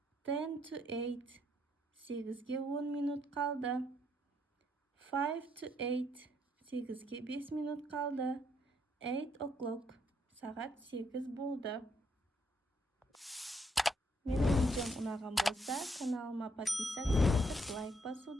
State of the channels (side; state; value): both; normal; correlation 0.73